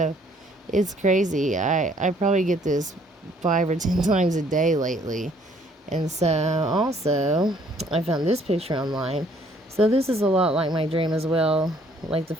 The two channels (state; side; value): normal; both; correlation 0.62